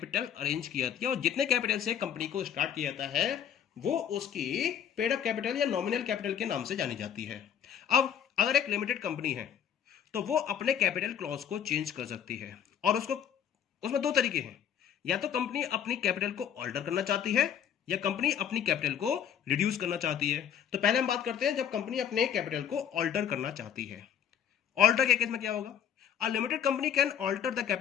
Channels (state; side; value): quieter; right; 9.0 dB